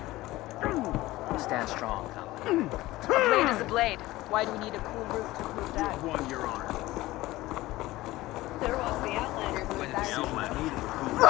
I'll stand strong. A blade is a blade. Why do we need a cool roof to prove that? Won your honor. there was the Outlander who was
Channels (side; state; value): right; quieter; 17.9 dB